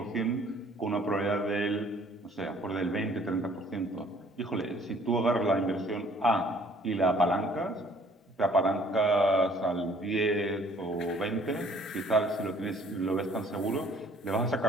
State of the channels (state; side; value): normal; both; correlation 0.58